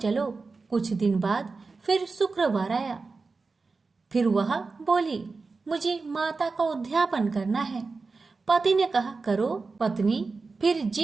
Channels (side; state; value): left; quieter; 4.2 dB